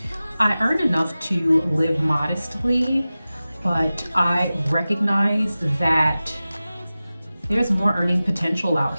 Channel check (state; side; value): inverted; both; correlation -0.96